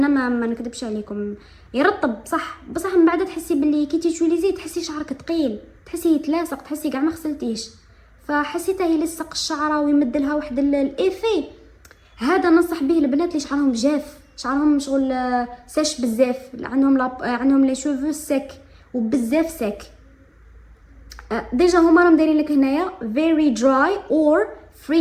ما نكذبش عليكم، يرطب بصح من بعد تحسي باللي كي تيتوليزي تحسي شعرك ثقيل، تحسي يتلاصق، تحسي كاع ما غسلتيش، فحسيته يلصق الشعره ويمد لها واحد الايفي. هذا ننصح به البنات اللي شعرهم جاف، شعرهم شغل ساش بزاف، عندهم لي شوفو سيك وبزاف سيك. ديجا هما راهم دايرين لك هنايا very dry or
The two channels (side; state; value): both; identical; correlation 1.00